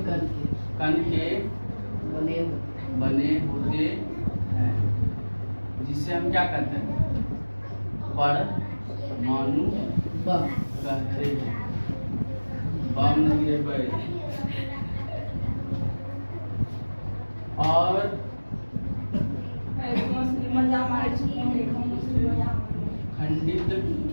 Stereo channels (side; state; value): both; inverted; correlation -1.00